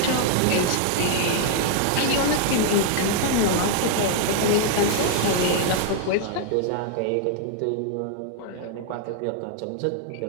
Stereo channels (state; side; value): different; both; correlation 0.00